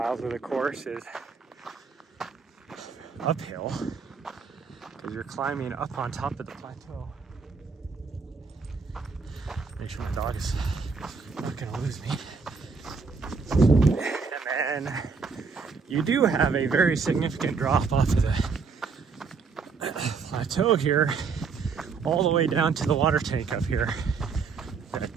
of the course is uphill because you're climbing up on top of the plateau. Make sure my dog is not going to lose me. And then you do have a very significant drop off of the plateau here, all the way down to the water tank up here.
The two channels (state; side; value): quieter; left; 5.1 dB